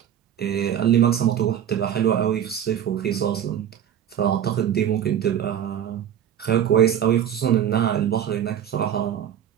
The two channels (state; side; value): quieter; left; 10.0 dB